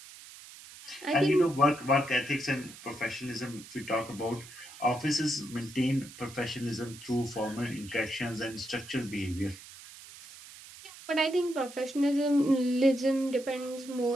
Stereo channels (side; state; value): right; noise; hiss, 17 dB below the sound